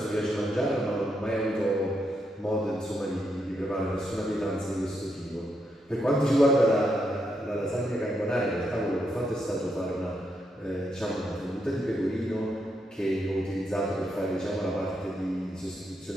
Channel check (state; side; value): normal; both; correlation 0.80